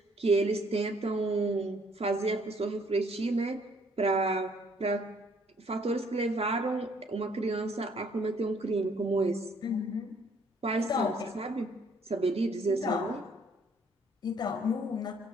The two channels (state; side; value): normal; both; correlation 0.63